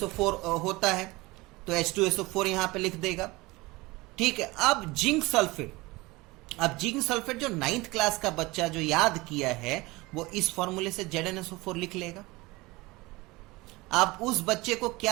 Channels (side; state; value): left; quieter; 22.3 dB